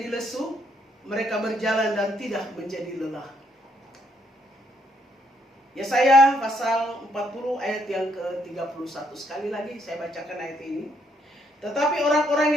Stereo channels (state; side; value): normal; both; correlation 0.72